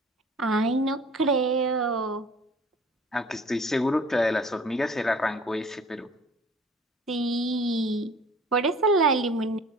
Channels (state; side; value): normal; both; correlation 0.49